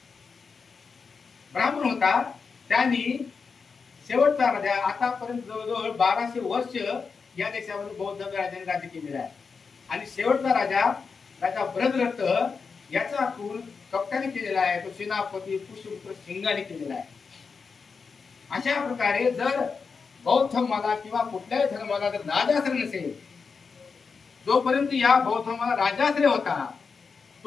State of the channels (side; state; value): right; quieter; 5.2 dB